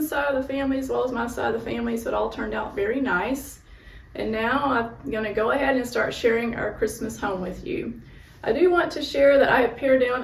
side of the family as well as my side of the family, so it all turned out very nice. And now I'm going to go ahead and start sharing our Christmas home with you. I do want to share that I have pared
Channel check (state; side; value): identical; both; correlation 1.00